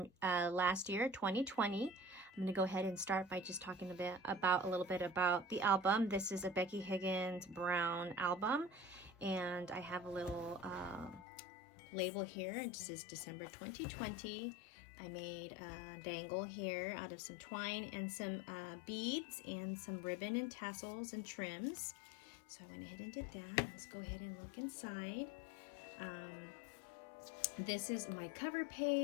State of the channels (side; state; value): right; drops out; at 11.2 s